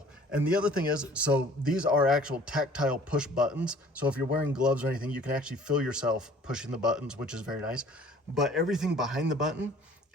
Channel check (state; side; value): normal; both; correlation 0.52